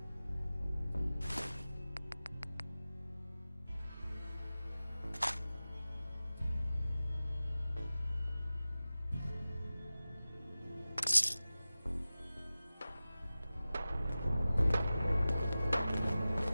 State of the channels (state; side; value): inverted; both; correlation -0.96